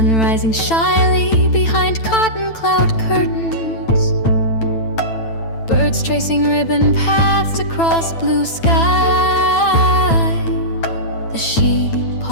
rising shyly behind cotton cloud curtains, birds tracing ribbon paths across blue sky. The sheep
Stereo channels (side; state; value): right; late; 9.0 ms